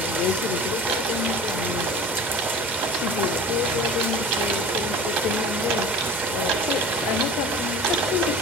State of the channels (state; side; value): normal; both; correlation 0.39